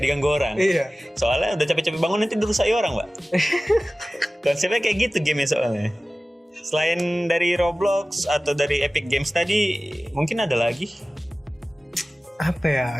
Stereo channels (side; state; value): both; normal; correlation 0.97